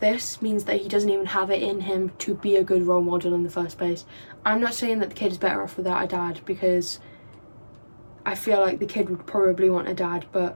this means that he doesn't even have it in him to be a good role model in the first place. I'm not saying that the kid is better off without a dad, because I feel like the kid would probably want a dad, but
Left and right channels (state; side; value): inverted; both; correlation -1.00